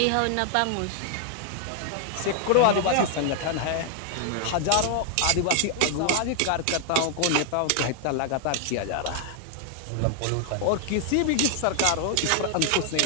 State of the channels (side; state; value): both; different; correlation 0.00